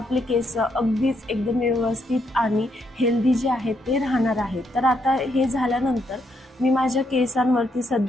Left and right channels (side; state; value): both; normal; correlation 0.76